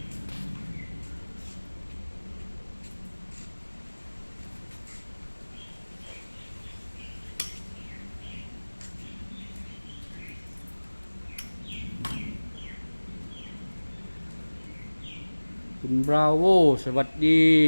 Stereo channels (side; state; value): both; inverted; correlation -1.00